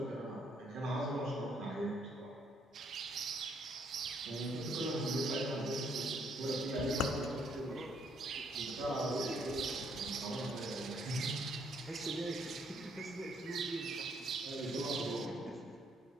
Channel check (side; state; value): both; normal; correlation 0.70